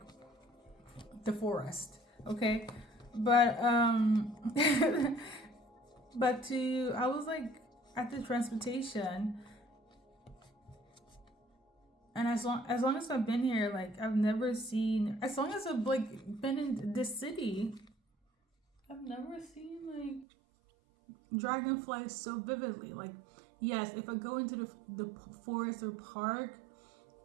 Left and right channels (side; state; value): left; drops out; at 20.2 s